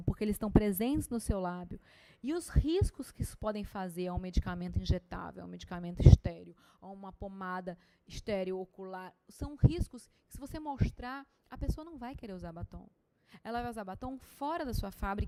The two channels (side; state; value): both; identical; correlation 1.00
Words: porque eles estão presentes no seu lábio, e os riscos que isso podem fazer a um medicamento injetável, a um medicamento estéreo, a uma pomada estéreo ocular, são riscos que, se você mostrar, a pessoa não vai querer usar batom. Ela vai usar batom fora da sua